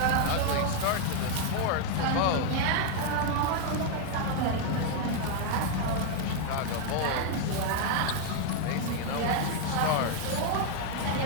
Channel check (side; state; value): both; different; correlation 0.00